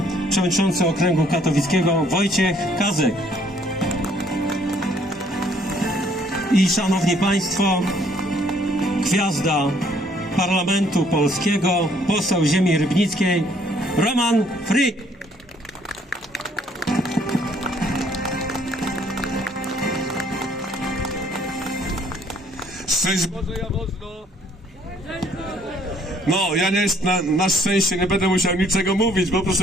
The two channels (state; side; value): normal; both; correlation 0.63